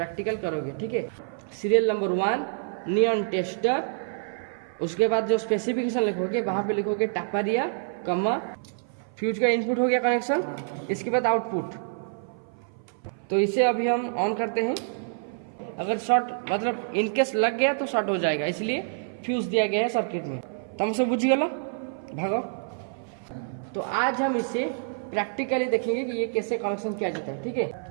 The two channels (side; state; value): left; silent; 56 dB below the other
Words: करोगे, ठीक है। Serial number 1 neon tester. उसके बाद जो स्पेसिफिकेशन लिखोगे वहां पे लिखोगे टापारिया कमा फ्यूज का इनपुट हो गया कनेक्शन। इसके बाद आउटपुट। तो इसे अभी हम ऑन करते हैं। अगर शॉर्ट मतलब इनकेस लग गया तो शॉर्ट हो जाएगा, इसलिए फ्यूज दिया गया है सर्किट में। तुम सब बुझ गया भागो। तो आज हम इसे प्रैक्टिकली देखेंगे कि ये कैसे कनेक्शन किया जाता है, ठीक